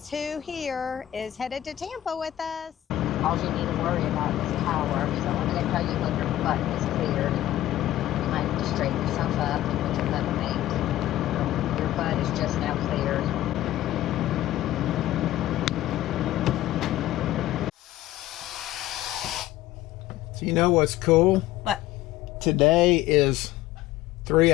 who here is headed to Tampa with us. All you need to worry about is power. So I'm going to tell you when your button is cleared. You might have to straighten yourself up and put your butt mate. Your butt is just now cleared. So you know what's cool? What? Today is 3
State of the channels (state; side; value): quieter; right; 14.0 dB